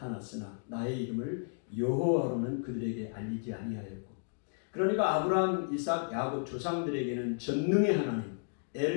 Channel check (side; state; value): right; silent; digital silence